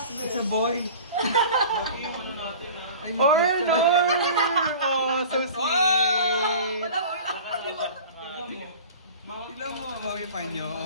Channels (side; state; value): both; inverted; correlation -0.40